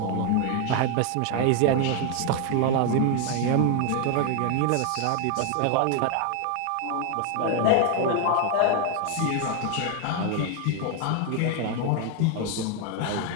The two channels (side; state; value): both; different; correlation 0.01